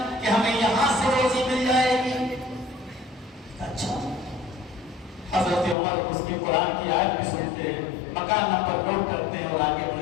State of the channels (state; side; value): drops out; right; at 5.8 s